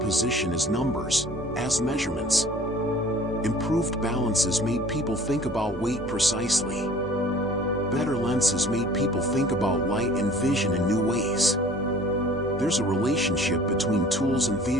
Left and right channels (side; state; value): both; normal; correlation 0.49